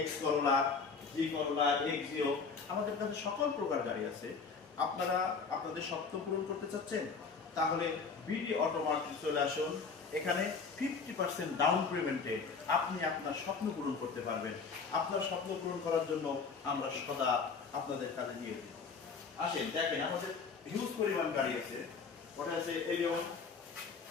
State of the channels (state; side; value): quieter; right; 5.1 dB